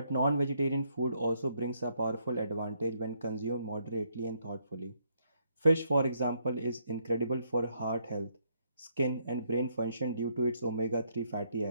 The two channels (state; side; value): inverted; both; correlation -0.73